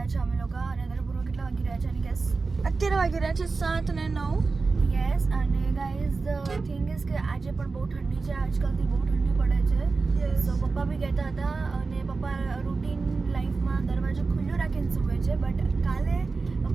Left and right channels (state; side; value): quieter; left; 4.1 dB